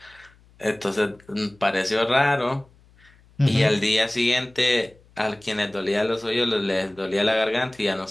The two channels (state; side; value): noise; left; hum, 29 dB below the sound